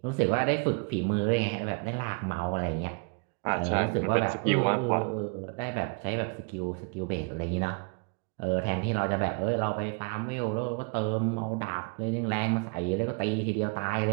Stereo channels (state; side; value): quieter; left; 36.5 dB